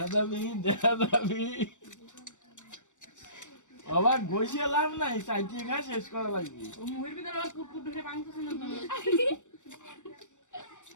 যাবি, দেখা যাবি, আবার বসে লাভ নাই, চাইতে খা শেষ করা লাগবে।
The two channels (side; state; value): right; late; 0.85 ms